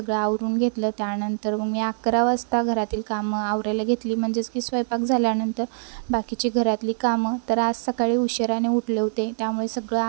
आवरून घेतलं। त्यानंतर मग मी 11 वाजता घरातील कामं आवरायला घेतली, म्हणजेच की स्वयंपाक झाल्यानंतर बाकीची घरातली कामं। तर आज सकाळी उशिराने उठले होते, त्यामुळे सगळं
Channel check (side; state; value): left; silent; digital silence